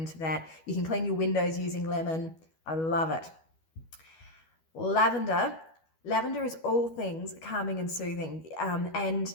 that. You can clean your windows using lemon. I love it. Lavender. Lavender is all things calming and soothing. And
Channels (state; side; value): late; right; 12 ms